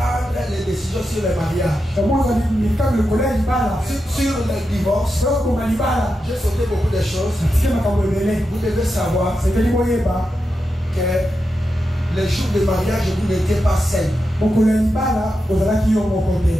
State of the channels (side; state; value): both; normal; correlation 0.88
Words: les décisions sur le mariage, sur le divorce, j'ai sauté beaucoup de choses. Vous devez savoir que le jour du mariage, vous n'étiez pas seul.